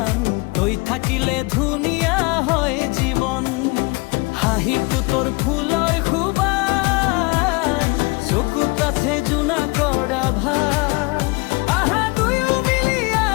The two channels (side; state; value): right; quieter; 26.7 dB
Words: তই থাকিলে ধুনীয়া হয় জীৱন। হাঁহিটো তোৰ ফুলৰ সুবাস, চকুত আছে জোনা কৰা ভাৰ। আহা দুয়ো মিলি